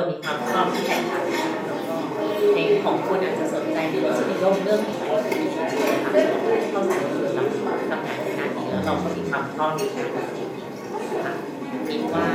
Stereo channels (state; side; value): identical; both; correlation 1.00